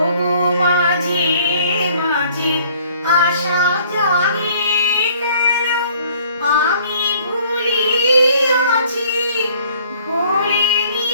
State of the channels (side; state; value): both; inverted; correlation -0.57